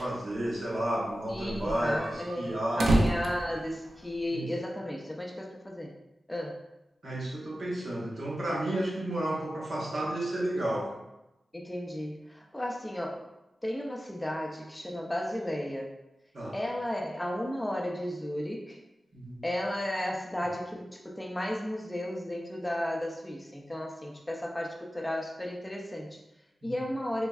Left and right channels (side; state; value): both; normal; correlation 0.94